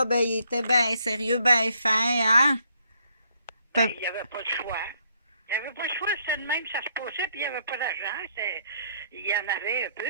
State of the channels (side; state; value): both; inverted; correlation -0.69